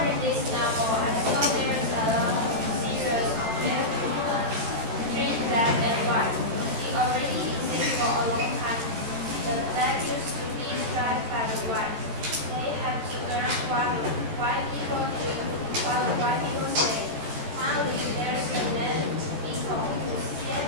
read this novel, I saw there's a lot of series of different treat black and white. It already exists for a long time. The black used to be striped by the white. They have to learn what white people do, what white people say. Finally, there's a man people who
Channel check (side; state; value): left; late; 13 ms